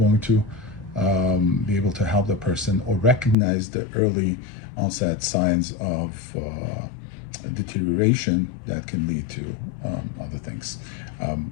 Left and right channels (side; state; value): right; drops out; at 3.4 s